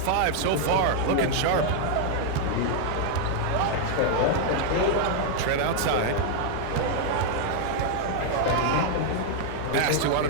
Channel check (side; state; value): both; different; correlation 0.00